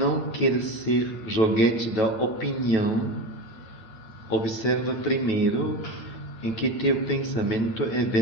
quer ser joguete da opinião, observa primeiro em que teu pensamento é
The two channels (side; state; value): right; late; 8.7 ms